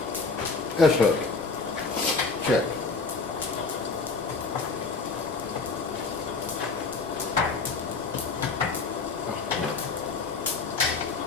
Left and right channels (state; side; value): quieter; right; 4.3 dB